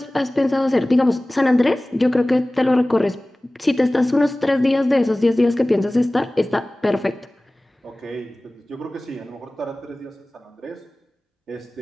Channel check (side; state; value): both; normal; correlation 0.98